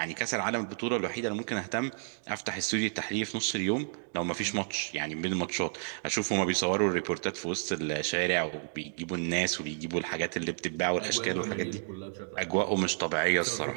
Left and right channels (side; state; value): left; silent; digital silence